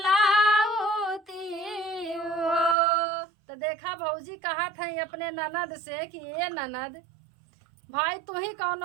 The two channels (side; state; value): left; drops out; at 2.8 s